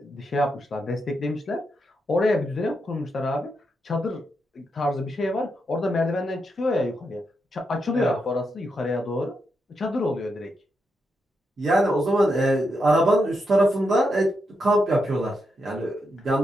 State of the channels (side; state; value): both; normal; correlation 0.83